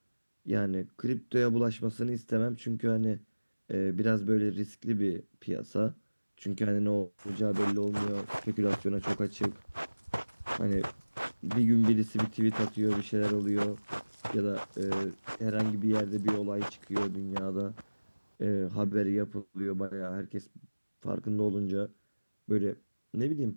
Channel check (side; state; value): both; inverted; correlation -1.00